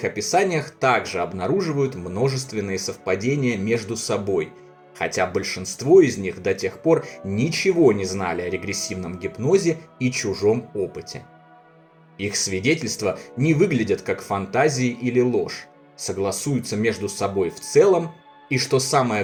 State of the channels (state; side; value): identical; both; correlation 1.00